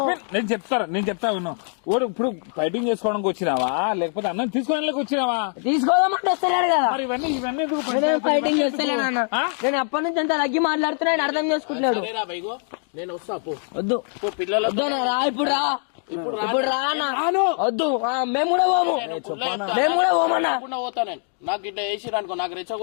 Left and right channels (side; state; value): right; silent; 56 dB below the other